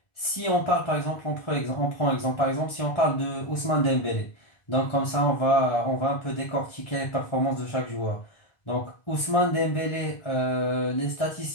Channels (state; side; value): late; right; 1.4 ms